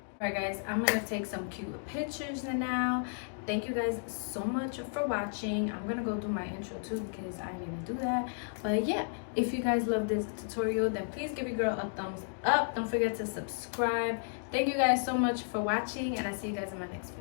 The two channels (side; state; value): right; silent; digital silence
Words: Alright guys, I'm gonna take some cute pictures now. Thank you guys so much for watching. I'm gonna go do my intro too because I need to do that. But yeah, if you guys love this tutorial, then please give your girl a thumbs up. Don't forget to subscribe. Thank you guys so much for watching, and I'll see you guys in my next